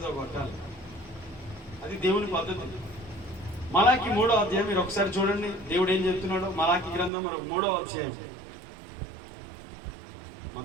కొట్టాలి. అది దేవుని పద్ధతి. మలాకి 3వ అధ్యాయం మీరు ఒకసారి చూడండి, దేవుడు ఏం చెప్తున్నాడో. మలాకి గ్రంథం 3వ అధ్యాయం,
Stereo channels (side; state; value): left; drops out; at 7.1 s